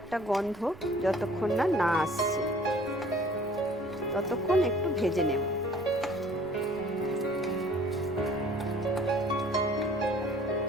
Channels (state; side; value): noise; right; rumble, 21 dB below the sound